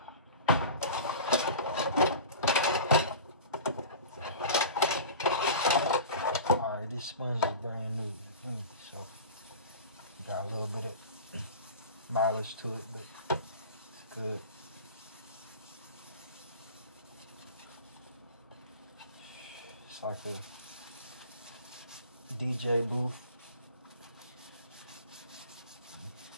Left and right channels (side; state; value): both; inverted; correlation -0.35